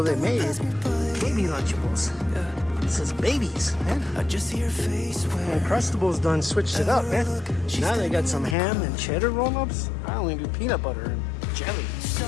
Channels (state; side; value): drops out; right; at 8.6 s